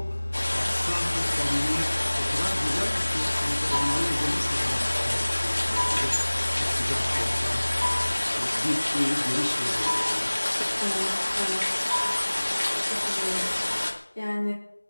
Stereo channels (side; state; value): both; inverted; correlation -1.00